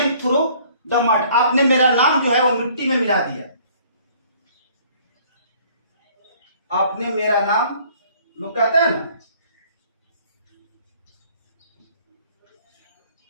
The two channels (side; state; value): both; inverted; correlation -0.57